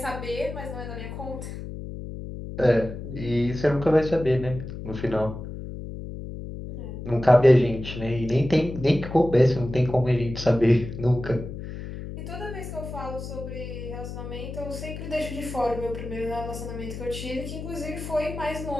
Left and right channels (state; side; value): noise; left; hum, 9 dB below the sound